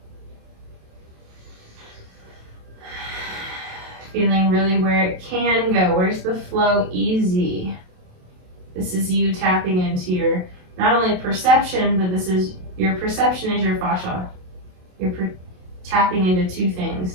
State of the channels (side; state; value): left; late; 27 ms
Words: Feeling really where it can go. Where's the flow easy? This is you tapping into your, not only perception, but this is, your perception is your fascia. You're tapping into two things,